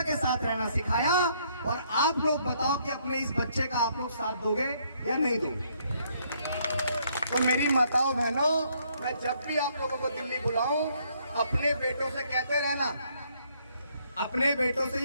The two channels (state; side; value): inverted; both; correlation -0.69